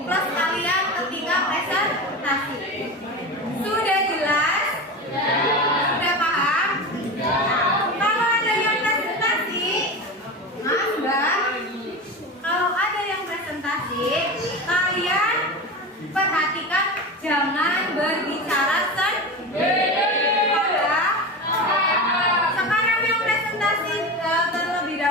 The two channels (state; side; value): normal; both; correlation 0.25